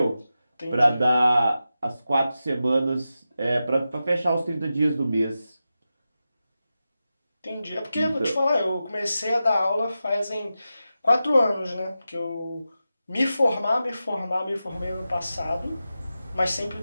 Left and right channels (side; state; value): both; inverted; correlation -0.92